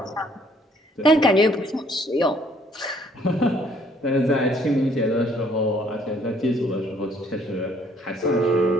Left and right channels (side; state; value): both; normal; correlation 0.62